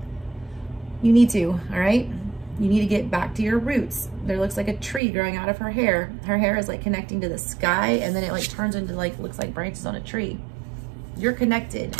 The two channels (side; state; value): left; drops out; at 5.0 s